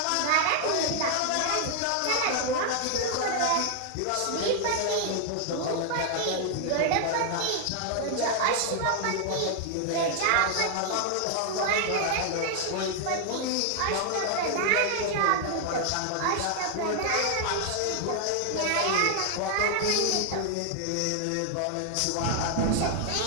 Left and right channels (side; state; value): both; different; correlation 0.00